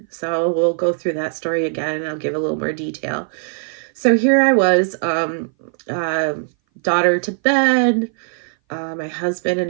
So we'll go through that story again, and I'll give a little more detail. So here I was, uh, daughter to bed. My husband and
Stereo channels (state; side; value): silent; left; 59 dB below the other